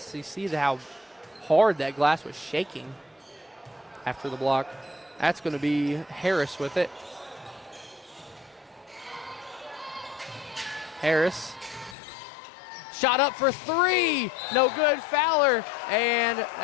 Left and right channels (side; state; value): right; drops out; at 12.0 s